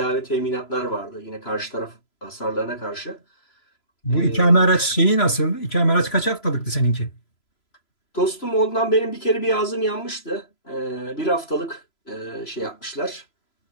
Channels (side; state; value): right; late; 3.0 ms